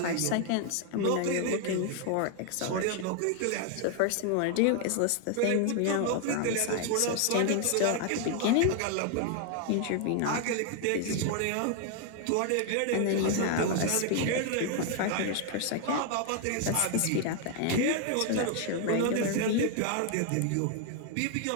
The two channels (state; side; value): different; both; correlation 0.00